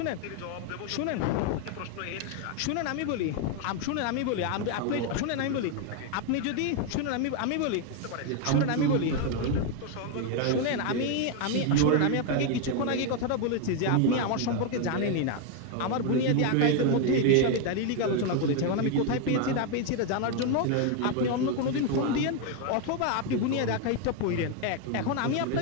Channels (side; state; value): both; different; correlation 0.01